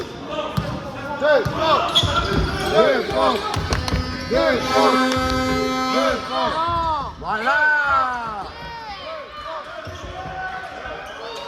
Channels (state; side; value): identical; both; correlation 1.00